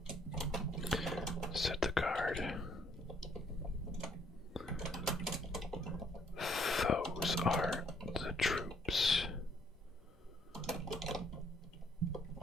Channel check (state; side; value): normal; both; correlation 0.66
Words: Said the guard. Those are the troops.